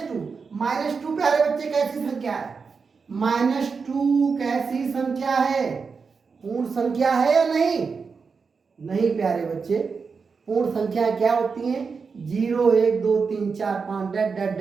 प्यारे बच्चे कैसी संख्या है, -2 कैसी संख्या है, पूर्ण संख्या है या नहीं, नहीं प्यारे बच्चे। पूर्ण संख्या क्या होती हैं, 0 1 2 3 4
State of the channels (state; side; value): quieter; left; 5.2 dB